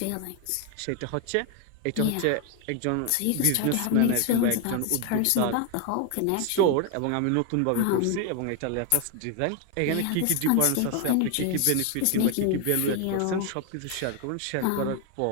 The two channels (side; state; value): both; different; correlation 0.01